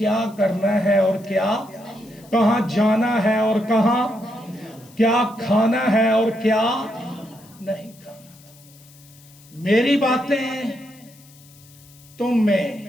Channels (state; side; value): noise; left; hiss, 25 dB below the sound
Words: کرنا ہے اور کیا، کہاں جانا ہے اور کہاں، کیا کھانا ہے اور کیا نہیں کھانا۔ میری باتیں تم میں